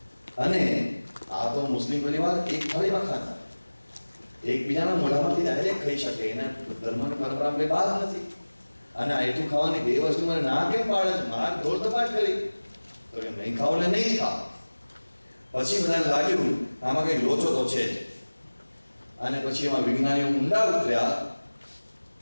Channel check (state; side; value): inverted; both; correlation -1.00